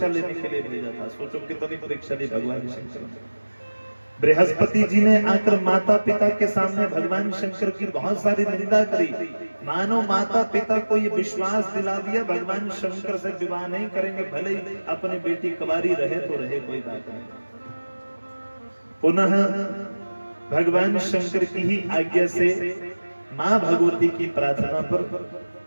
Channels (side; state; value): both; inverted; correlation -1.00